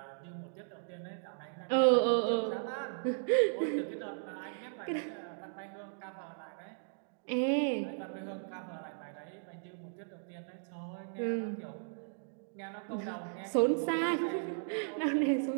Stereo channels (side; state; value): left; silent; digital silence